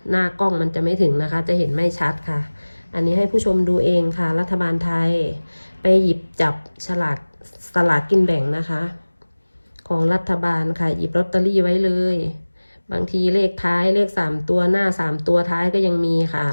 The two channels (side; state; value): both; inverted; correlation -1.00